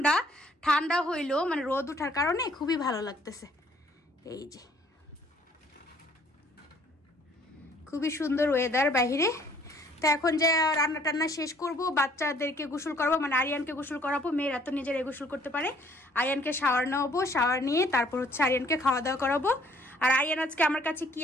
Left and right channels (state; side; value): normal; both; correlation 0.60